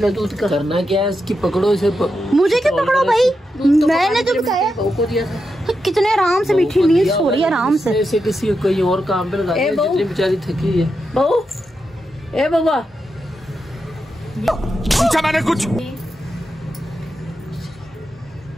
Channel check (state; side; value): normal; both; correlation 0.87